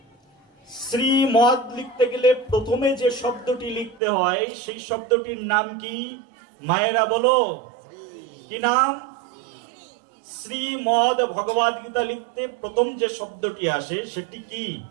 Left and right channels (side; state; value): left; drops out; at 4.0 s